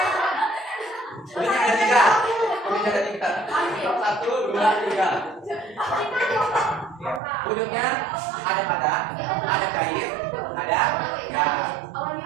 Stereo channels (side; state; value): left; drops out; at 7.2 s